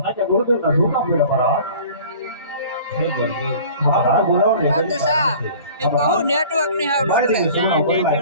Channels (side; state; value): both; inverted; correlation -0.45